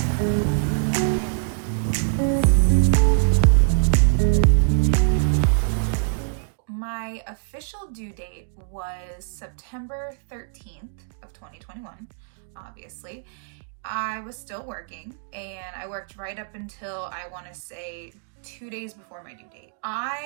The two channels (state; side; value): silent; left; digital silence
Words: My official due date was September 13th of 2021, obviously. I was still working, and I worked right up until, I want to say, 2 days before my due date.